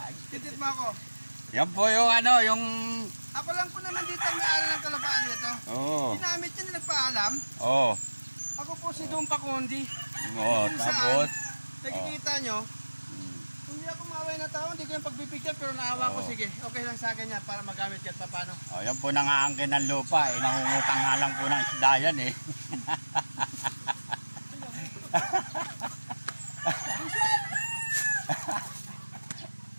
Titit mo ako. Yan po yung ano, yung... Ako lang po naman dito ang may-ari ng kalupaan nito. Oo. Ginamit niya, nagpaalam. Oo. Ako po si Dumpa Kondi. Oo, Kung tapos... saan, nakikita nyo, hindi ako maaway na tao, hindi ko yung pagbibigyan, pero naawa ko, sige, okay lang sa akin yan para magamit yan, paano? Oh, yan po nangaangkin ng lupa eh. Nangungutang nga lang po ng isda yan eh.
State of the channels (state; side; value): inverted; both; correlation -1.00